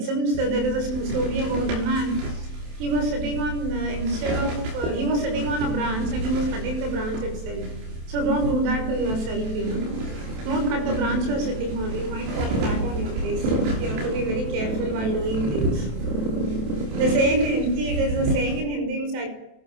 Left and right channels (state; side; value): late; left; 27 ms